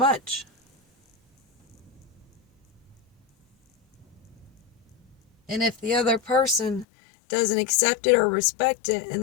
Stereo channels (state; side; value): drops out; right; at 6.9 s